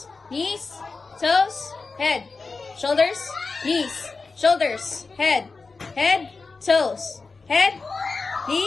knees, toes, head, shoulders, knees, shoulders, head, toes, head,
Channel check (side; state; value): right; quieter; 4.2 dB